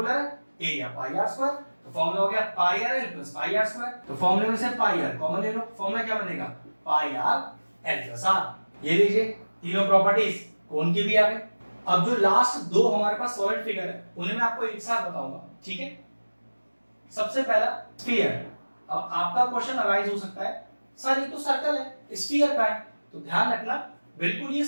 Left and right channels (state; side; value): inverted; both; correlation -1.00